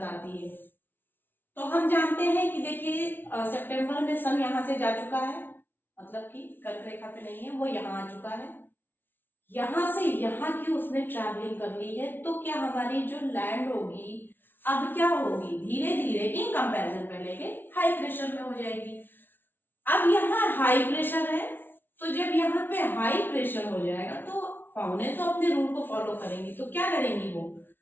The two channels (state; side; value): late; right; 0.099 ms